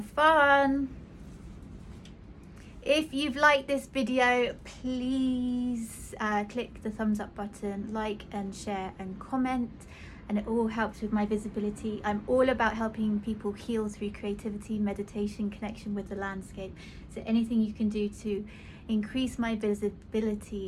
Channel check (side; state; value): both; identical; correlation 1.00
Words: fun! If you've liked this video, please click the thumbs up button, like and share and comment, and it all helps with my visibility. I'm all about helping people heal through creativity, meditation, connection with the landscape. So anything you can do to increase my